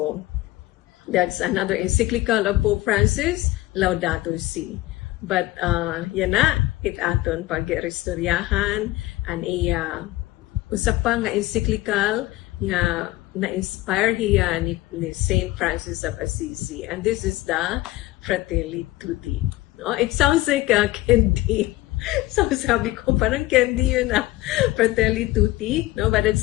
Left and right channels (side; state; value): right; quieter; 17.6 dB